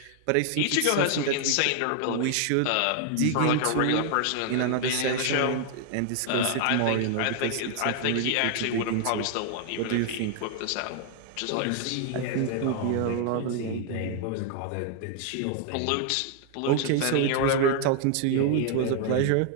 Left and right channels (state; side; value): different; both; correlation 0.00